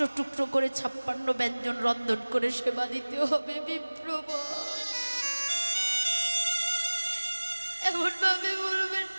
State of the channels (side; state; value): both; inverted; correlation -1.00